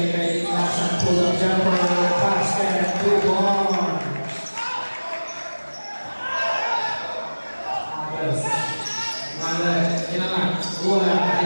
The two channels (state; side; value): inverted; both; correlation -1.00